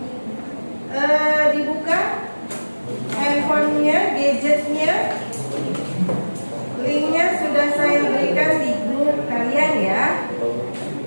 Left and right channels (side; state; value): both; inverted; correlation -1.00